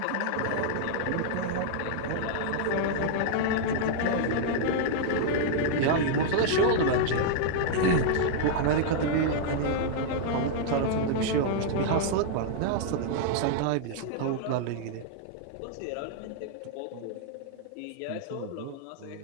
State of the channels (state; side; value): different; both; correlation -0.01